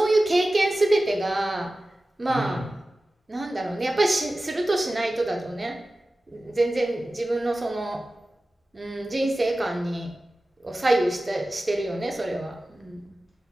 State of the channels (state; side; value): normal; both; correlation 0.95